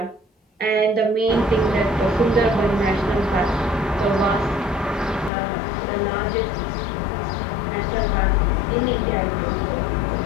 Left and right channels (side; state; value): right; drops out; at 5.3 s